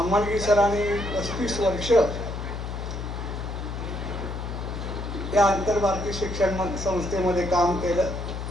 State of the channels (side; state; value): left; noise; hum, 6 dB below the sound